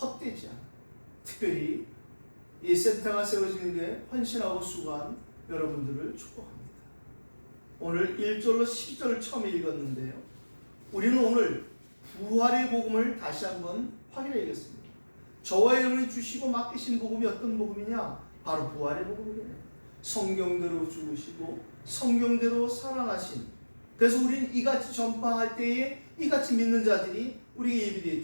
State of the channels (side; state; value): both; inverted; correlation -1.00